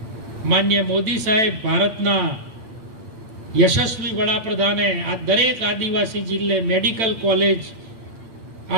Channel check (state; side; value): late; left; 8.5 ms